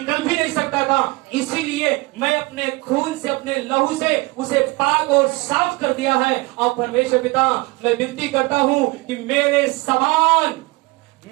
भी नहीं सकता था। इसीलिए मैं अपने खून से, अपने लहू से उसे पाक और साफ कर दिया है। और परमेश्वर पिता, मैं विनती करता हूं कि मेरे समान,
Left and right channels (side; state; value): left; quieter; 24.2 dB